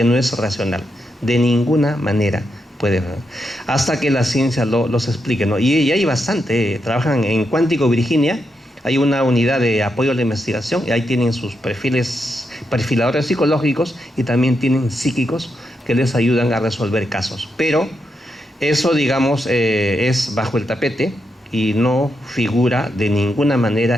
no es racional. De ninguna manera puede, hasta que la ciencia los explique, ¿no? Y hay bastante. Trabajan en Cuántico, Virginia. Hay una unidad de apoyo a la investigación y ahí tienen sus perfiladores psicológicos y también tienen psíquicos que les ayudan a resolver casos. Pero eso, digamos, es bajo el tapete y no figura de ninguna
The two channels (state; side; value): normal; both; correlation 0.83